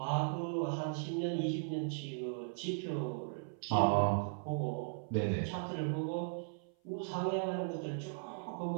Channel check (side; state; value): left; silent; 53 dB below the other